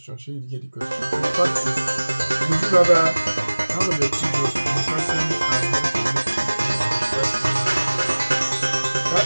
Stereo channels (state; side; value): inverted; both; correlation -1.00